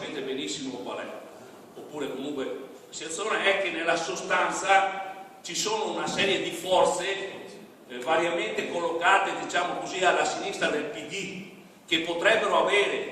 benissimo qual è, oppure comunque La situazione è che nella sostanza ci sono una serie di forze variamente collocate, diciamo così, alla sinistra del PD, che potrebbero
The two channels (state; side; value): identical; both; correlation 1.00